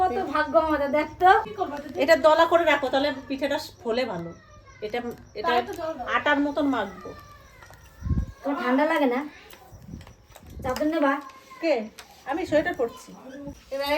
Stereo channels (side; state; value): both; identical; correlation 1.00